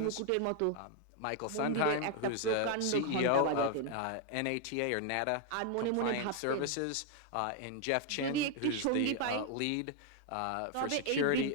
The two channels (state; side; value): different; both; correlation 0.00